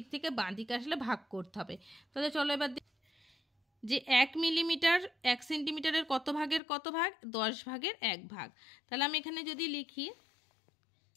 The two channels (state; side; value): drops out; right; at 6.6 s